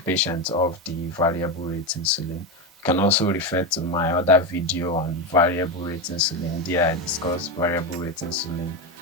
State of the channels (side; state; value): both; normal; correlation 0.14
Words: off the variable rate insulin. You can also refer to my other video on variable rate insulin. There I discuss variable rate insulin,